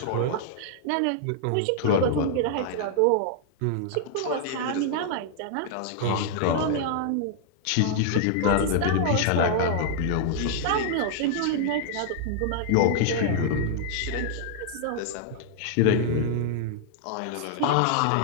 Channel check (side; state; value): both; different; correlation -0.01